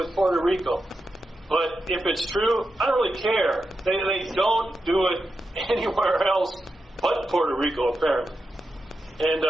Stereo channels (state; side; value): normal; both; correlation 0.88